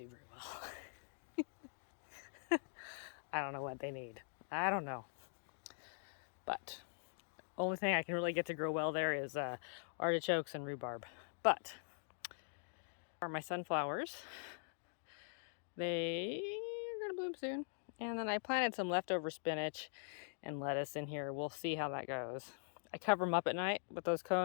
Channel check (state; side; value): silent; right; digital silence